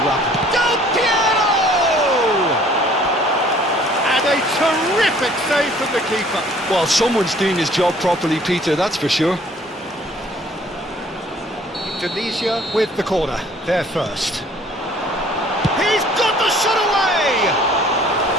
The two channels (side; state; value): both; normal; correlation 0.56